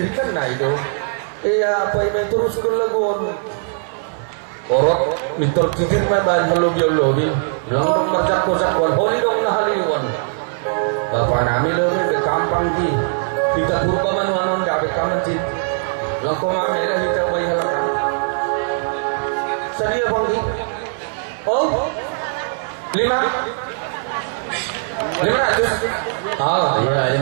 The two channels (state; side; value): silent; left; 57 dB below the other